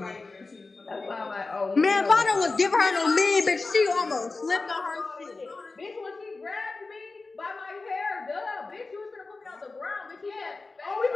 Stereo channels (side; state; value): right; quieter; 3.7 dB